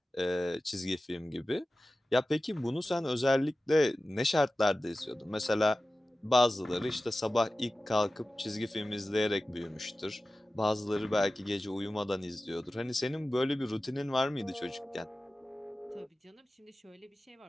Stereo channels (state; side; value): normal; both; correlation 0.95